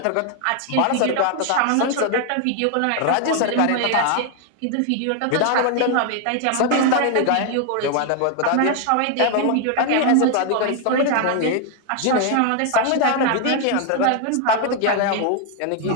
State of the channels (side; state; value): both; different; correlation 0.00